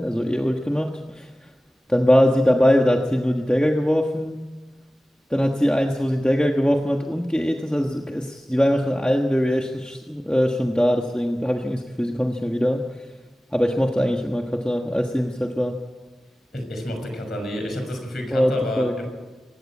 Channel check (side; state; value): both; normal; correlation 0.96